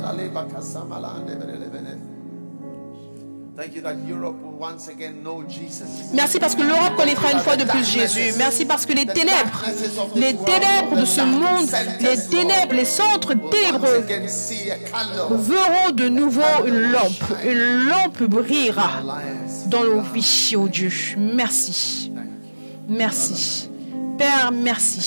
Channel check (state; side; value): inverted; both; correlation -1.00